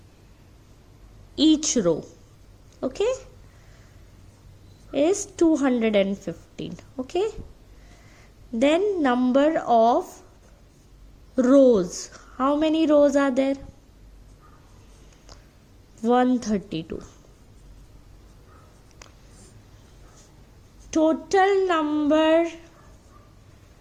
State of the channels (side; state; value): both; identical; correlation 1.00